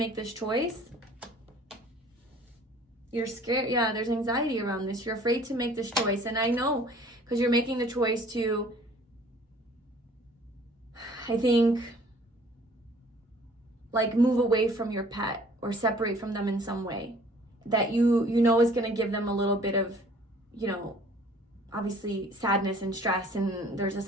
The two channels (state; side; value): normal; both; correlation 0.54